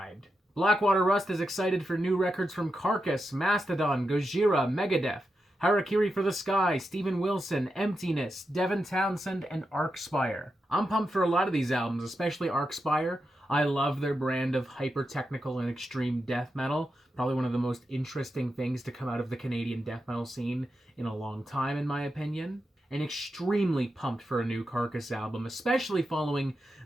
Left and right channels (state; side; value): normal; both; correlation 0.87